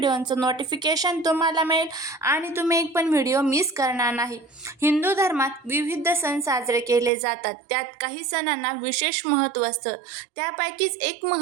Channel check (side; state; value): left; drops out; at 7.1 s